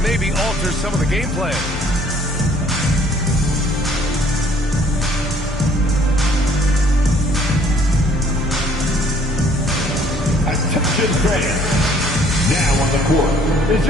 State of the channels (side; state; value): both; normal; correlation 0.59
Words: maybe alter some of the game plan. Attention fans. Now on the court is